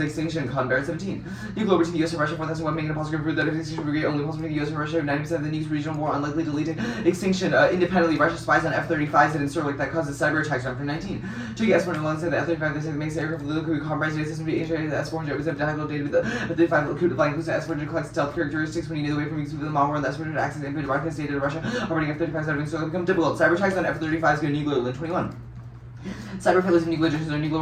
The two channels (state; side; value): identical; both; correlation 1.00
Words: extinction. Conbar 17. Nuclear over to the US and Russia 4,000 making a positive proof that if extinction brigade only possible to the US and Russia 90% of the nukes regional war unlikely to lead to extinction. Independently, Russia spies on F-35s and Sterling that causes cyber attacks around for 19. Turkey S-1 said the F-35 they say makes the aircraft little could compromise data system be integrated. The S-400 was a dialogue data with the F-35 could flying includes the S-400 collects stealth characteristics when you know the way from use of the malware and the S-400 access and broadcast data to Russia operating F-35s out of Sterling become difficult. Cyber attacks on F-35s go nuclear in 21. Cyber failures of nuclear agents or nuclear